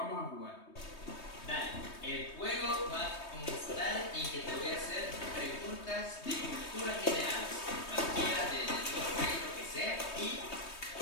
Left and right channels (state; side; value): late; right; 3.2 ms